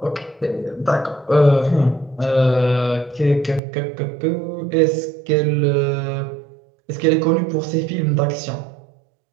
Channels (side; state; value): left; drops out; at 3.6 s